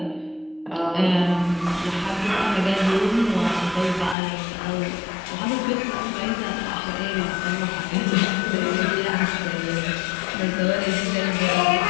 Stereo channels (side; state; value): right; drops out; at 4.2 s